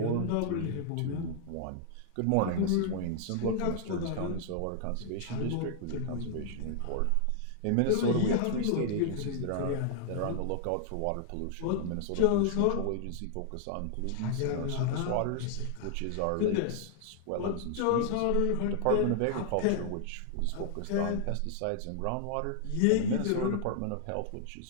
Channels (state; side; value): different; both; correlation -0.01